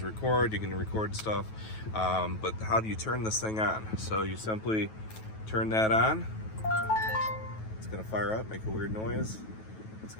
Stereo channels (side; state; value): right; late; 9.2 ms